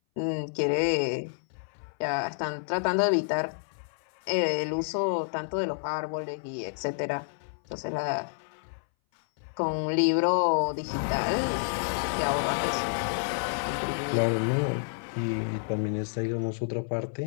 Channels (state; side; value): silent; right; 58 dB below the other